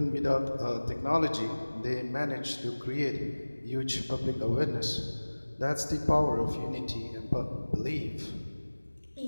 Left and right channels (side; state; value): both; inverted; correlation -1.00